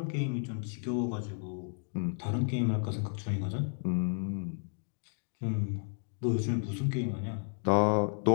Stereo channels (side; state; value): right; silent; 56 dB below the other